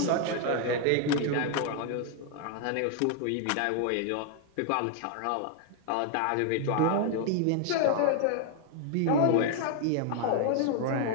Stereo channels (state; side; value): different; both; correlation 0.00